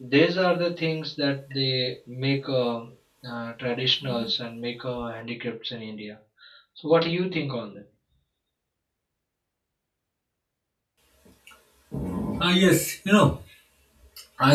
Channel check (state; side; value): identical; both; correlation 1.00